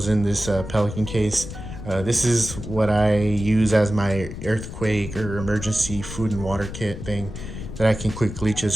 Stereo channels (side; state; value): left; noise; rumble, 9 dB below the sound